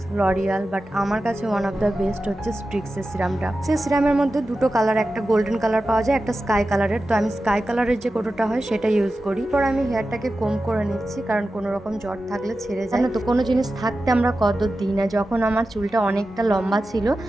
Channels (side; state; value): both; normal; correlation 0.93